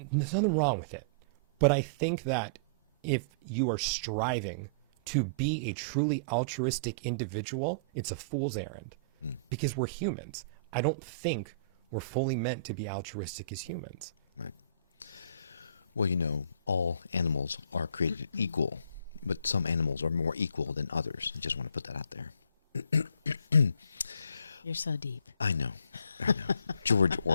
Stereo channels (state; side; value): inverted; both; correlation -0.46